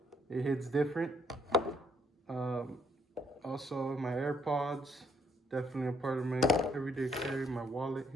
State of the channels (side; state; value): both; normal; correlation 0.70